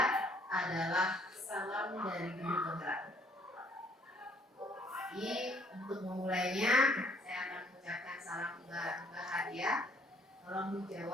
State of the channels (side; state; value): both; normal; correlation 0.62